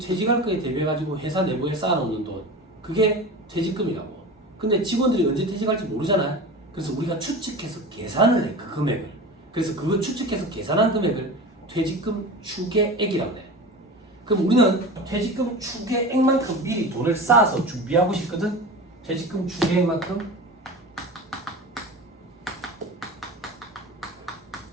거에 대비해가지고 회사 내부에 쌓아놓는 돈 그게 퇴직금이라고. 근데 직원들이 언제 퇴직할지 모르잖아. 그래서 우리가 추측해서 계산을 해, 그 금액을. 그래서 그거 추측해서 계산한 금액을 퇴직금 추계액이라고 해. 그럼 우리는 퇴직금 추계액만큼 미리 돈을 쌓아서 준비하고 싶거든. 퇴직금 추계액만큼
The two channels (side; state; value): both; normal; correlation 0.31